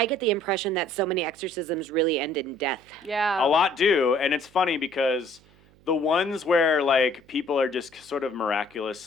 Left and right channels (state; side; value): noise; right; hum, 29 dB below the sound